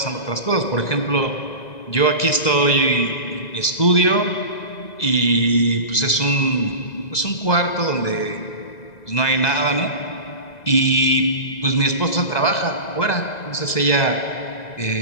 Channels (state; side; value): late; right; 2.0 ms